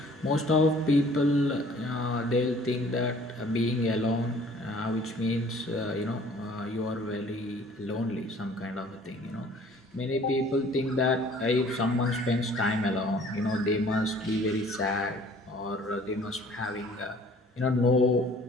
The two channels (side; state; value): both; normal; correlation 0.54